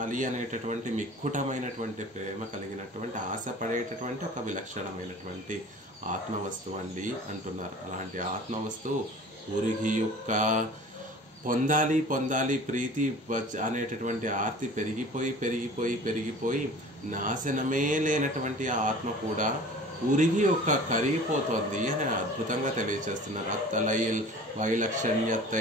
అనేటటువంటి మిక్కుటమైనటువంటి ప్రేమ కలిగినటువంటి ఆశపడేటటువంటి ఒక విలక్షణమైనటువంటి ఆత్మవస్తువు అండి అంటున్నారు. అలాంటి ఆత్మవస్తువు ఉరిగి యొక్క పొందాలి ప్రీతి అనేటటువంటి ఆర్తి పెరిగిపోయి నాశనమే లేనటువంటి ఆత్మ కూడా ఉరిగి యొక్క కరిగిపోతోంది అని అద్భుతంగా తెలియచేస్తున్నారు. అత్తలైల్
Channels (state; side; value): normal; both; correlation 0.43